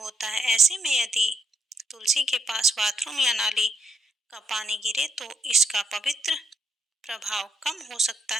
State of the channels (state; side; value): normal; both; correlation 0.79